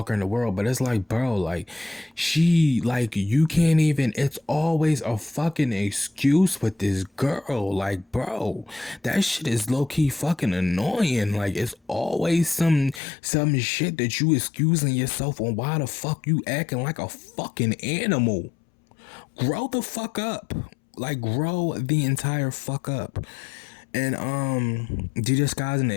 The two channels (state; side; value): drops out; right; at 13.0 s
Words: in the world, but it's like, bro, like, she, like, you can't even, it's always a fucking excuse with this girl. Like, bro, that shit is low-key fucking annoying. Like, it's always some shit that you excusing yourself on. Why the fuck you acting like a fucking animal? Grow the fuck up. Like, grow the entire fuck up. And DJ Sky's an